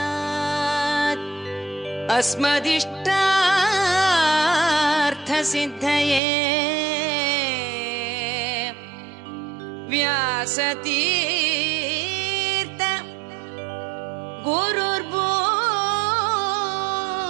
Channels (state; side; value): drops out; left; at 6.2 s